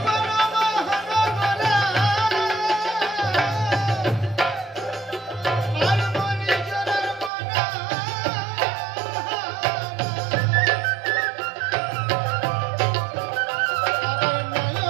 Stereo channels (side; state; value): left; drops out; at 7.3 s